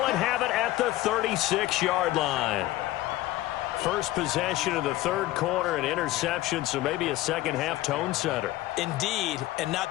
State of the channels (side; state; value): right; quieter; 16.3 dB